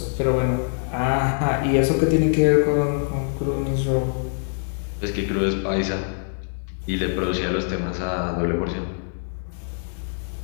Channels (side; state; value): right; silent; 59 dB below the other